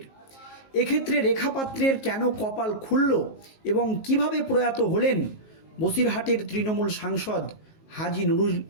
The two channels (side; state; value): right; late; 19 ms